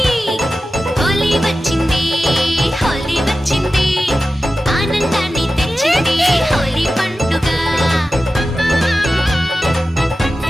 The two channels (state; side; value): normal; both; correlation 0.94